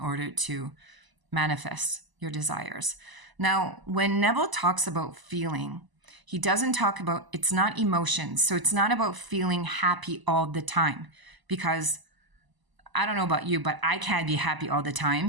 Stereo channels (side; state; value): left; late; 1.0 ms